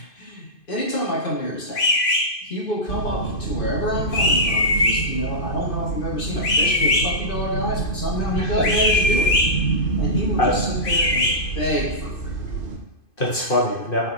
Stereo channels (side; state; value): right; late; 2.5 ms